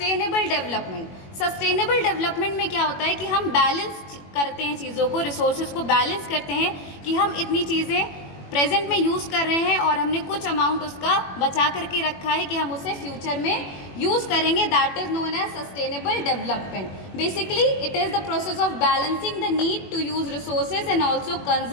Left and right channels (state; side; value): late; right; 21 ms